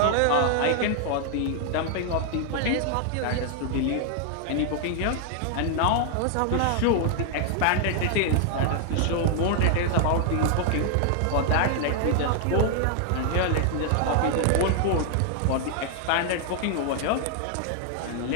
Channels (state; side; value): different; both; correlation 0.00